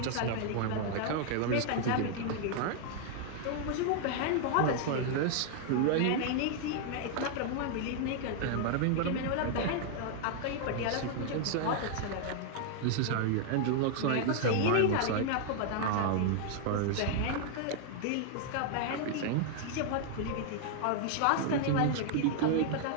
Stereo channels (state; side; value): different; both; correlation 0.00